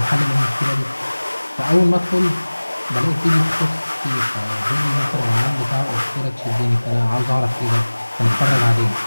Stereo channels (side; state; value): both; inverted; correlation -1.00